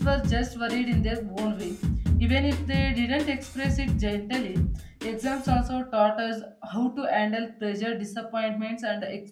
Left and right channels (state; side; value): identical; both; correlation 1.00